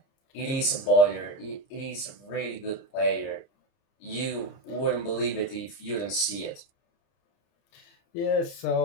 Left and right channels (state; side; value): late; right; 30 ms